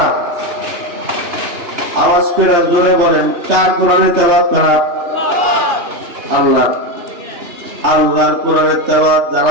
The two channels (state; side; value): late; left; 2.9 ms